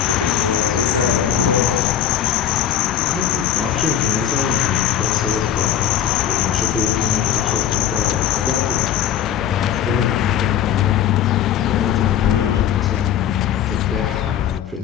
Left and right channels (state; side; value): quieter; right; 10.0 dB